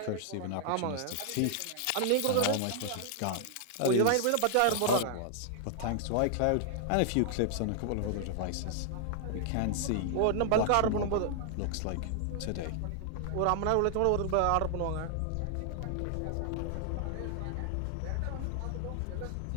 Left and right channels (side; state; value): both; different; correlation 0.00